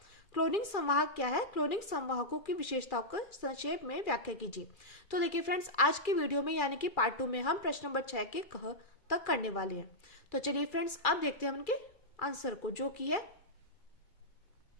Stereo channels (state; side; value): late; right; 2.4 ms